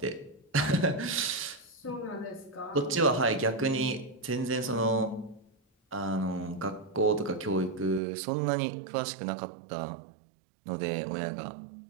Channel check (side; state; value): left; drops out; at 8.0 s